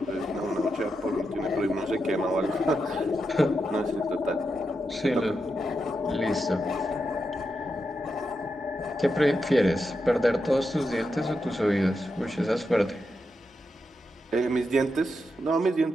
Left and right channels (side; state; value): both; normal; correlation 0.86